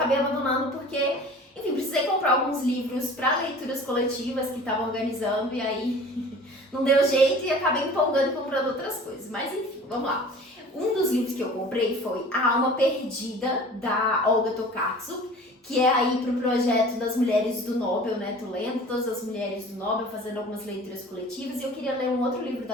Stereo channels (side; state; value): both; normal; correlation 0.44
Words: abandonando porque, enfim, precisei comprar alguns livros para leituras coletivas que estavam organizando e aí não deu jeito e acabei empolgando e comprando outras coisas. Mas enfim, vamos lá. Um dos livros que eu comprei foi A Alma Perdida, da Olga Tokarczuk, que é aí pro projeto das Mulheres do Nobel, né? Tô lendo todas as Mulheres do Nobel, fazendo algumas leituras coletivas, e eu queria ler um outro livro